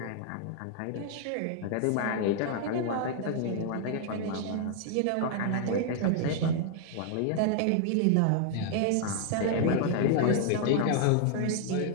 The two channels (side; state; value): both; different; correlation 0.00